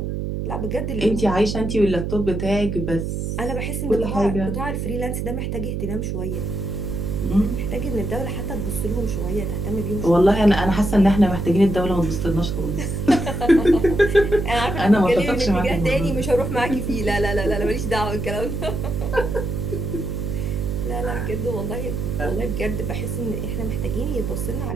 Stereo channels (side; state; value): right; noise; hum, 3 dB below the sound